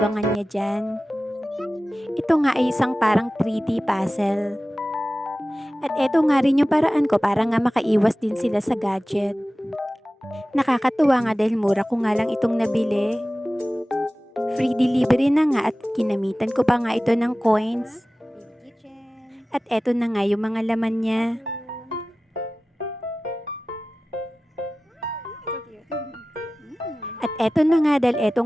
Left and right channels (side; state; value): both; normal; correlation 0.96